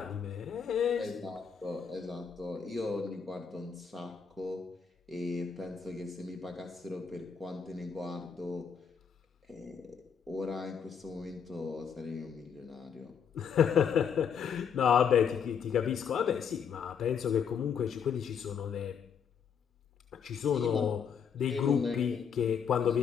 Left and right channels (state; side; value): quieter; right; 7.0 dB